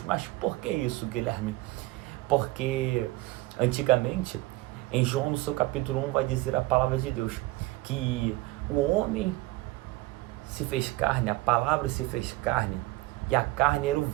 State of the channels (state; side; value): quieter; left; 19.9 dB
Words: Mas por que isso, Guilherme? Porque antigamente, em João, no seu capítulo 1, vai dizer a palavra de Deus, que o homem se fez carne, a palavra se fez carne, e a carne era o